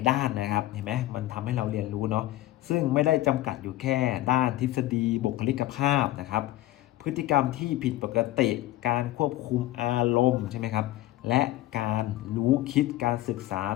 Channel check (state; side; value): quieter; right; 16.1 dB